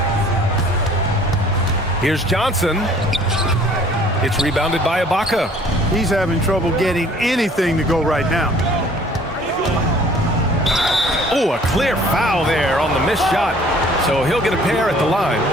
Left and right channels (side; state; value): both; normal; correlation 0.54